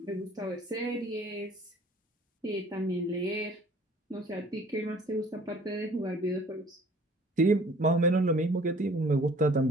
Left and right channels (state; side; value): normal; both; correlation 0.53